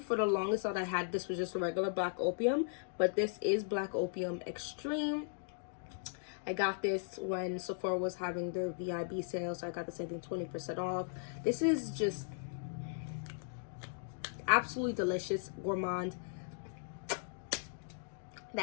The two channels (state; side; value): silent; right; digital silence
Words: for the longest thought I had this was just a regular Black Opium, but this is Black Opium Extreme. I got this when Sephora was having their VIB sale, so I got this, I think, 20% off. This is just absolutely delicious. Gourmand.